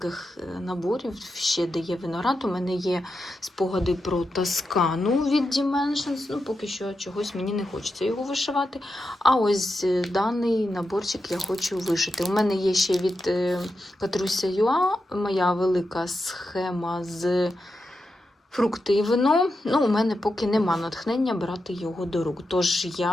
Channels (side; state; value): both; normal; correlation 0.88